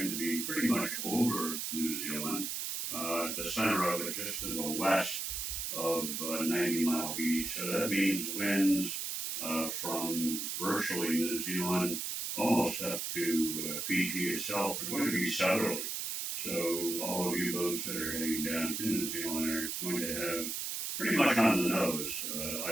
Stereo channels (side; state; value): right; noise; hiss, 3 dB below the sound